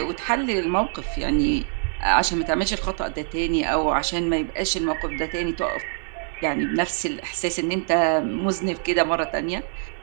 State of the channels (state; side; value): silent; left; 55 dB below the other